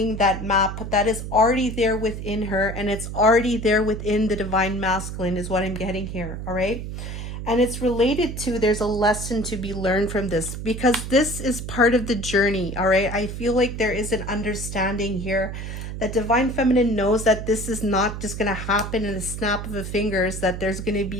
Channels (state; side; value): noise; right; hum, 7 dB below the sound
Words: that map that is already there within her, and it's already there within the divine masculine is what I'm getting here, all right? And it's related to, there's a lesson to be learned from this because this is part of the journey, all right? I feel like there is an understanding here that divine feminine knows that this is not just going to happen in a snap of a fingers, that there's going to